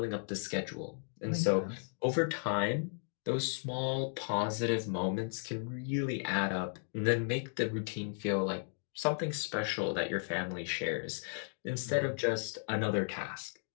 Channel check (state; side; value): silent; right; digital silence